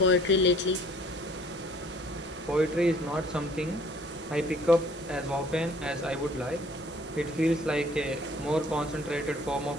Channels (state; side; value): normal; both; correlation 0.56